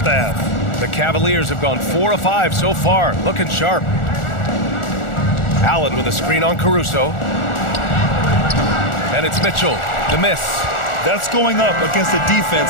half. The Cavaliers have gone 4 of 5 so far. Looking sharp. Allen with a screen on Caruso. And it's Mitchell. The miss. That's going up against a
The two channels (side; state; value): right; late; 1.4 ms